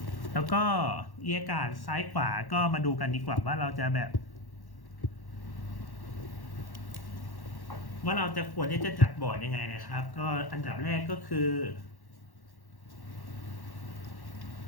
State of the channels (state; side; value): late; right; 1.1 ms